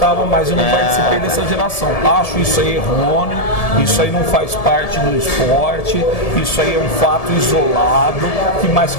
mas eu não participei dessa geração. Acho isso aí errôneo, isso aí não faz parte do esporte, isso aí é um fato isolado, que mais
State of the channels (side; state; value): right; late; 1.7 ms